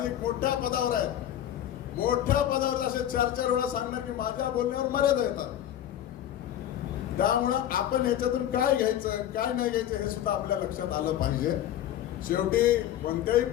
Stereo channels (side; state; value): right; quieter; 11.5 dB